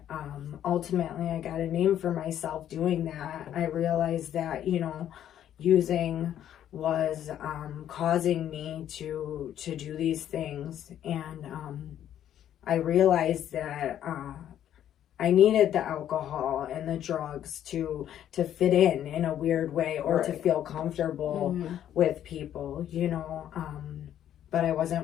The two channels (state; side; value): quieter; right; 10.8 dB